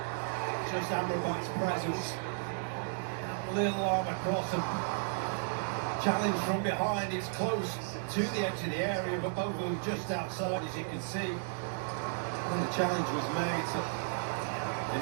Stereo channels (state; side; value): silent; left; digital silence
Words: Just Amrabat's presence. Little arm across and challenge from behind. It's close to the edge of the area, but both of them just outside, as you can see. When the challenge was made. So